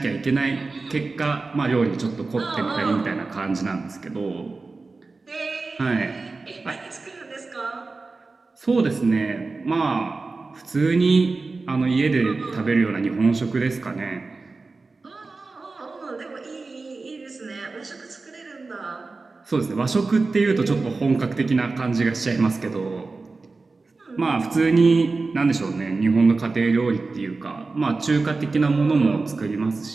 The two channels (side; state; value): left; quieter; 3.8 dB